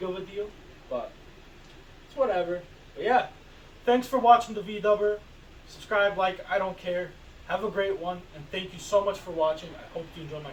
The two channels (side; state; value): both; identical; correlation 1.00